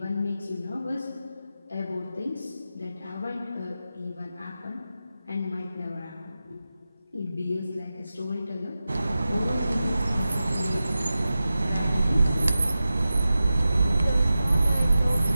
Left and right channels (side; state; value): both; inverted; correlation -0.93